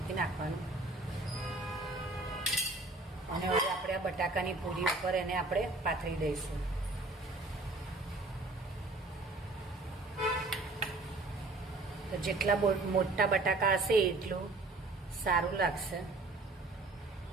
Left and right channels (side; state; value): left; quieter; 3.1 dB